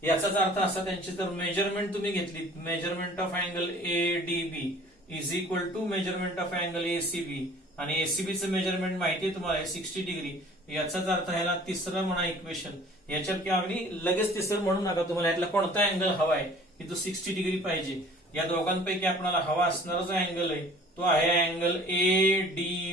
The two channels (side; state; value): both; normal; correlation 0.49